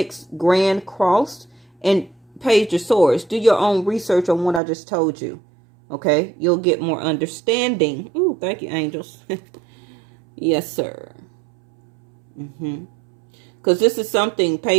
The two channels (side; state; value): left; drops out; at 4.6 s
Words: Grand Cross, and Page of Swords, do your own research on what I just told you. Okay, you'll get more understanding. Ooh, thank you, angels. Yes, sir. Because this is something,